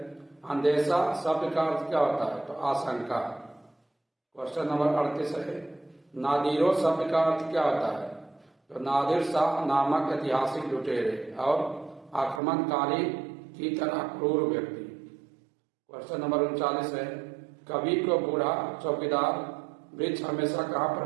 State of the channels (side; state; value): left; drops out; at 12.4 s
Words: अंदेशा शब्द का अर्थ क्या होता है? तो आशंका। क्वेश्चन नंबर 38 है नादिरों शब्द का अर्थ क्या होता है? तो नादिर शाह नामक ऐतिहासिक लुटेरे और आक्रमणकारी की तरह क्रूर व्यक्ति। क्वेश्चन नंबर 39 है कवि को बूढ़ा चौकीदार वृक्ष हमेशा कहाँ पर